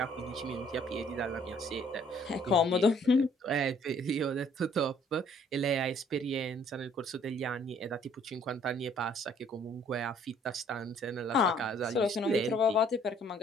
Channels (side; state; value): both; normal; correlation 0.60